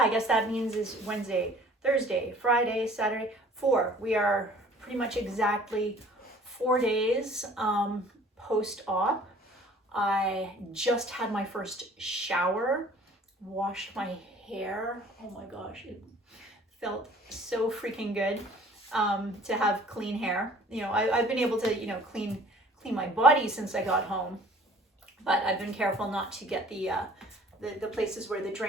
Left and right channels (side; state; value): both; normal; correlation 0.51